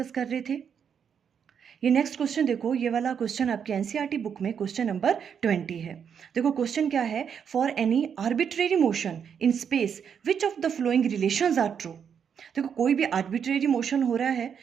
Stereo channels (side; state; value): left; quieter; 7.5 dB